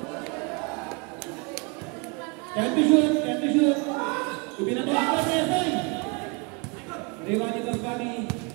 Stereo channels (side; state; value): left; quieter; 31.5 dB